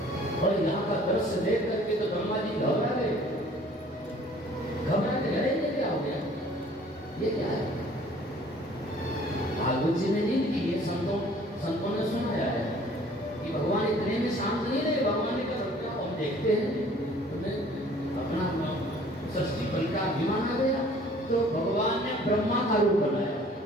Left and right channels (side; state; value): both; normal; correlation 0.53